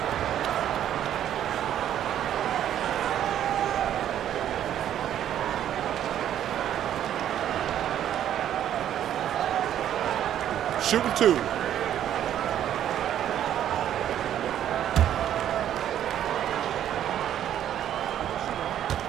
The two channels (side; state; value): left; quieter; 10.8 dB